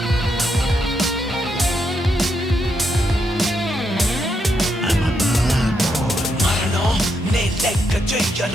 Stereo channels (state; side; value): normal; both; correlation 0.80